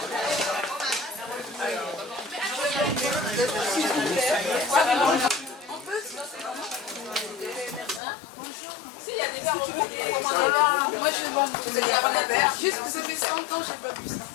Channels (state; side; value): drops out; right; at 8.0 s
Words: Si, il y a des verres. Moi, je vais boire. Vous allez avoir un verre. Juste que ça fait 100 ans que je n'ai pas bu ça.